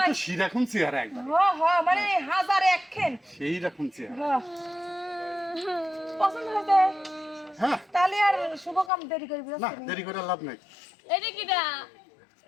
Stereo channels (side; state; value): right; drops out; at 8.9 s